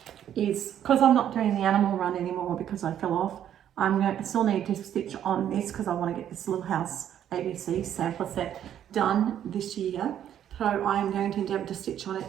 is, because I'm not doing the animal run anymore because I fell off, I still need to stitch on this because I want to get this Little House ABC sampler set done this year. So I am going to endeavour to stitch on it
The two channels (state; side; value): quieter; left; 10.3 dB